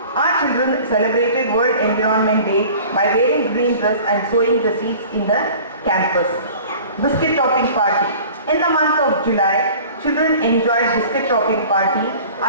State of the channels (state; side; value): inverted; both; correlation -0.44